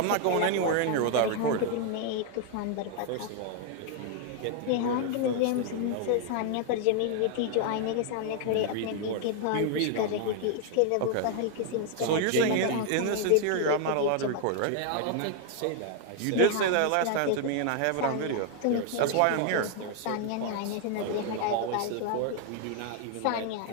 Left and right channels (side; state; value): both; different; correlation 0.00